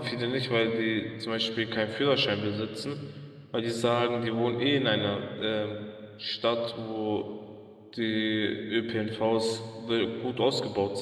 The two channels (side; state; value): both; identical; correlation 1.00